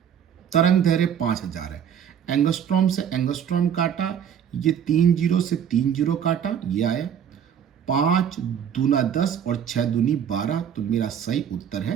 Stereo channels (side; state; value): left; quieter; 8.5 dB